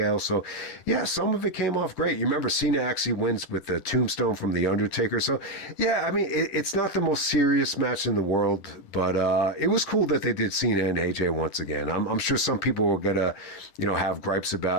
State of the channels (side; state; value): right; late; 10 ms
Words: So, yeah, some of it came off great. You remember Cena actually wins with the tombstone from the Undertaker. So, yeah, I mean, it's not the most serious match in the world, but it was cool that they did Cena and AJ once again. I'm sure some people were gonna, have gripes